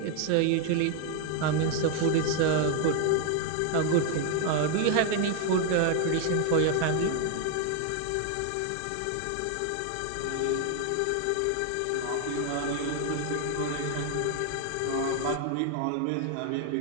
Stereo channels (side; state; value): both; different; correlation 0.00